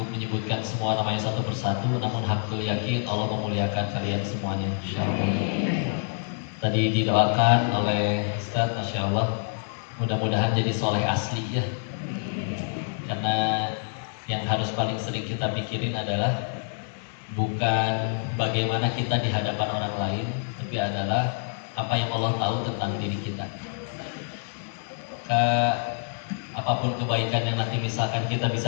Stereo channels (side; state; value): right; silent; 60 dB below the other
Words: menyebutkan semua namanya satu persatu, namun hakul yakin Allah memuliakan kalian semuanya insyaallah. Tadi didoakan oleh Ustaz, Masya Allah, mudah-mudahan jadi soleh asli ya. Karena yang harus paling sering kita pikirin adalah bukan bagaimana kita di hadapan orang lain, tapi adalah apa yang Allah tahu tentang diri kita. Apapun kebaikan yang nanti misalkan kita